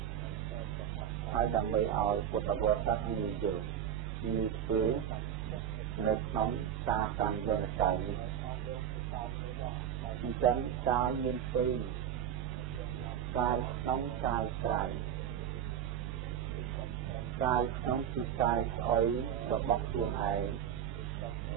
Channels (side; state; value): left; quieter; 9.3 dB